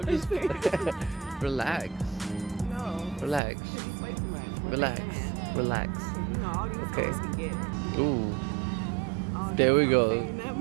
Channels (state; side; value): drops out; left; at 3.4 s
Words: just playing. Relax. No. Relax. You play too much. Relax. Relax. All these Okay. girls can get it. Ooh. All There we these go. saying that,